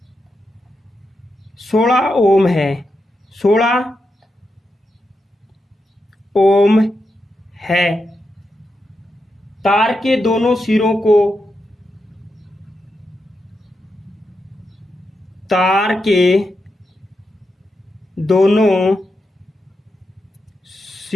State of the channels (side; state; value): both; normal; correlation 0.86